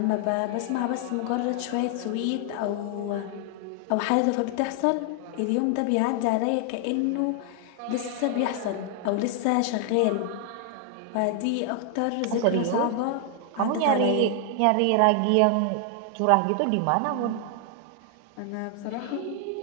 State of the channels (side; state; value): both; different; correlation 0.00